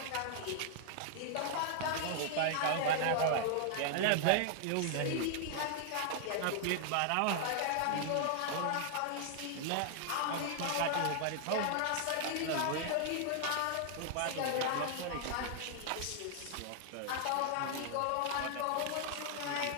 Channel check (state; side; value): different; both; correlation -0.01